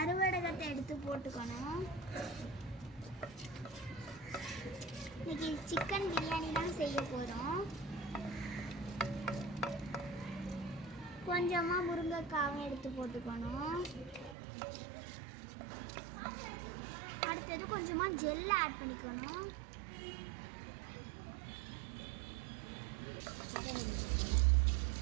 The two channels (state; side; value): drops out; left; at 14.4 s